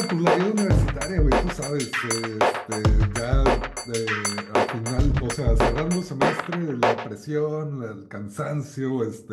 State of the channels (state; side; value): identical; both; correlation 1.00